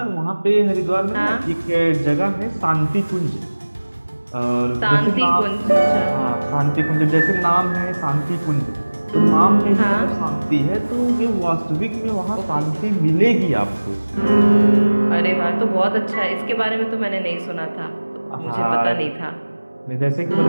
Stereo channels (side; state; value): both; inverted; correlation -1.00